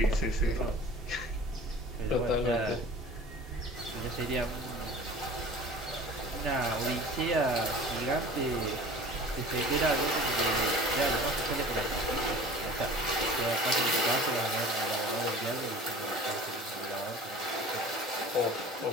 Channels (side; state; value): both; normal; correlation 0.42